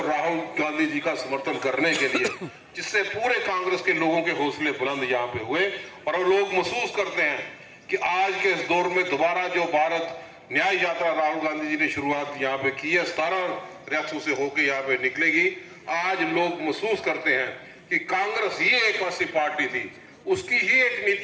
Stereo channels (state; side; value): identical; both; correlation 1.00